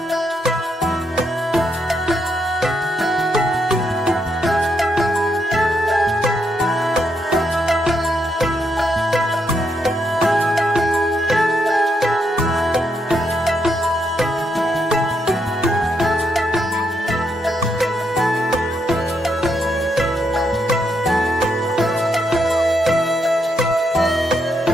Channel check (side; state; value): both; normal; correlation 0.78